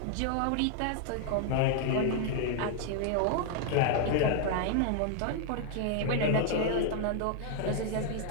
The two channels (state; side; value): different; both; correlation 0.00